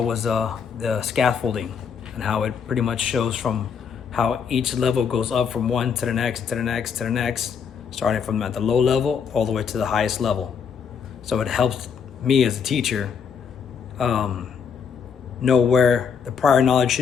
the scaffolding and how it pretty much shows from how each level goes up from one to the next, to the next, to the next, starting from at the low level all the way to the highest level. So it helps me as a teacher know where the prior knowledge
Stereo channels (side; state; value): right; quieter; 6.7 dB